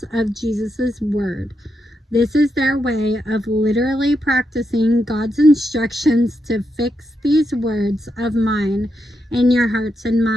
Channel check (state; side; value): normal; both; correlation 0.84